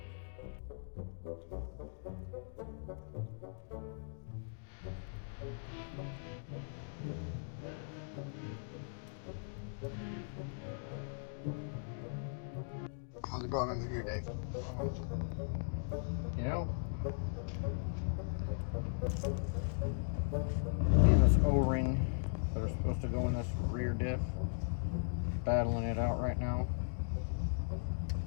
How's it going under here, Dave? You know, and this O-ring that are supposed to go in this rear diff, battling it out right now.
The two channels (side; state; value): right; silent; digital silence